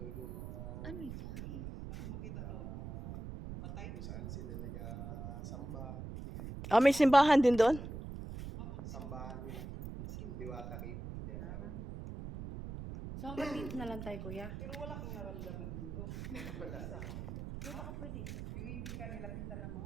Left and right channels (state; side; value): noise; right; rumble, 8 dB below the sound